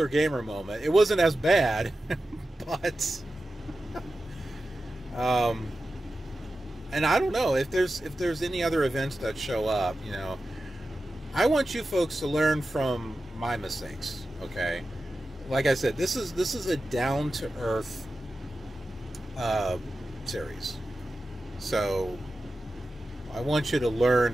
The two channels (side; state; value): both; normal; correlation 0.93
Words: gamer moment. It wasn't as bad, but and I don't know if there's any other events that show up. You know, I want you folks to learn from my mistakes. Okay, like I said, this is a down to earth series, so I want you to learn